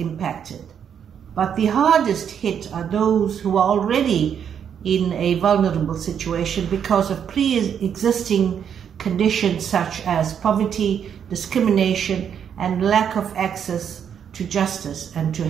but the hardest hit are those who are already in a vulnerable situation because of pre-existing conditions such as poverty, discrimination, and lack of access to justice and to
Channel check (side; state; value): left; quieter; 8.2 dB